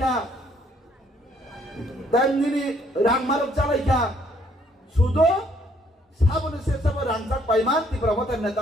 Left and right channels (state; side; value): normal; both; correlation 0.65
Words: তেমনি রাংমারক চালাইখা, শুধু সাবনে সে সব রাংজাক পাইমান ত্রিপুরা মতা